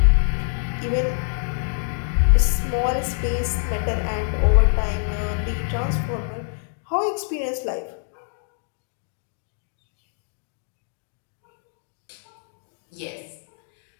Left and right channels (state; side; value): silent; right; digital silence